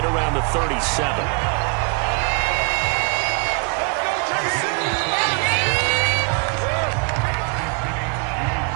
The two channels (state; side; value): quieter; left; 35.0 dB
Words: around the 37.